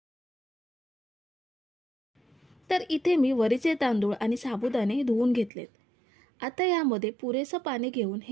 तर इथे मी वरीचे तांदूळ आणि साबुदाणे धुवून घेतलेत। आता यामध्ये पुरेसे पाणी घेऊन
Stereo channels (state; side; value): drops out; left; at 5.5 s